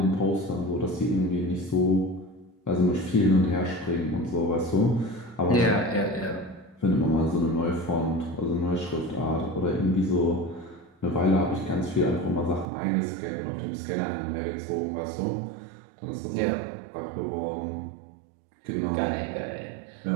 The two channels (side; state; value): left; drops out; at 12.7 s